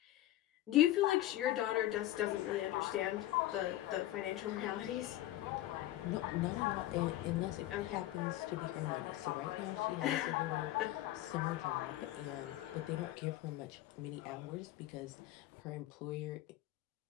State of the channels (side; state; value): right; quieter; 15.1 dB